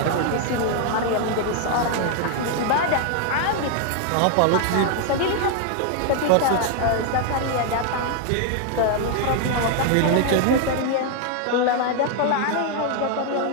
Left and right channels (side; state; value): both; different; correlation 0.00